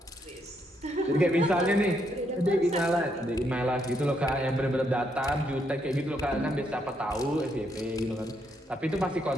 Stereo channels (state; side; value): normal; both; correlation 0.76